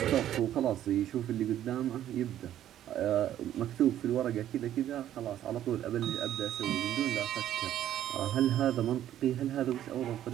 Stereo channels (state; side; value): quieter; left; 11.8 dB